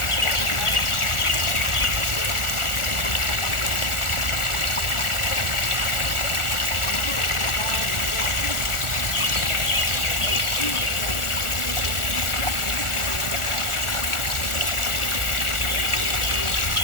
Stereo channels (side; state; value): right; late; 1.4 ms